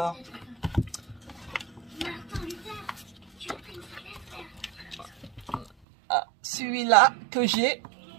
Ah, celui-là que j'ai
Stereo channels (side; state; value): left; drops out; at 5.7 s